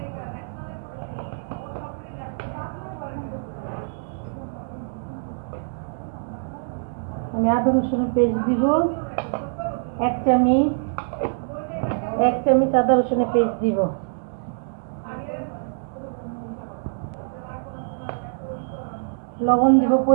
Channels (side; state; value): left; silent; digital silence